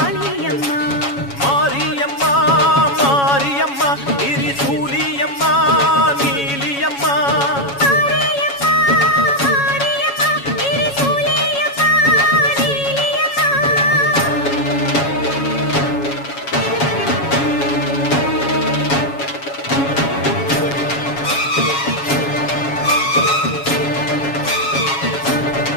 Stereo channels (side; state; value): right; late; 7.2 ms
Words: மாரியம்மா மாரியம்மா திரிசூலியம்மா நீலியம்மா. மாரியம்மா மாரியம்மா திரிசூலியம்மா நீலியம்மா.